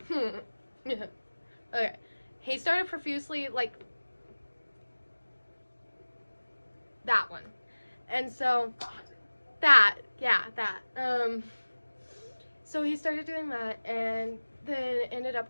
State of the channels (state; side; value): inverted; both; correlation -1.00